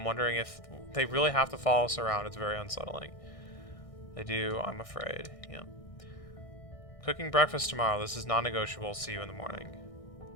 wondering if they really have to follow us around. It's very unsettling. They do, I'm afraid. Yeah. Cooking breakfast tomorrow. This is non-negotiable. See you in the morning.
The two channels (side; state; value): right; late; 1.6 ms